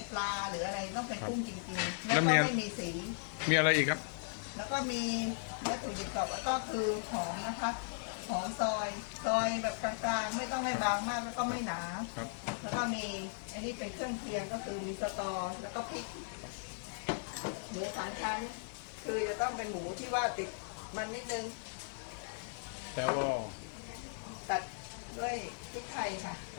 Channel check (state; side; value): silent; right; digital silence